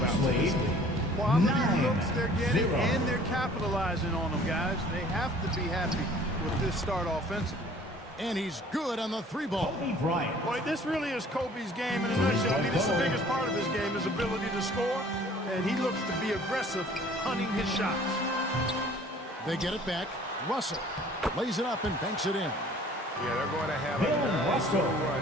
out to this lead. Quality looks they're getting, and they're capitalizing on them, guys. They have to be happy with this start offensively. And he's good on the 3-ball. Boy, this really is Kobe's game in a nutshell. I mean, this is the biggest part of his game, his ability to score, and he looks to be aggressive, hunting his shots. They get it back. Russell lays it up and banks it in. Yeah, they're going to have a nice little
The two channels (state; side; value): normal; both; correlation 0.52